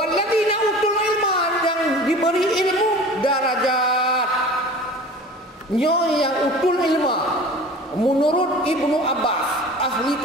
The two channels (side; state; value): both; normal; correlation 0.40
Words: utul ilma, yang diberi ilmu darajat. Nyo yang utul ilma menurut Ibnu Abbas, ahli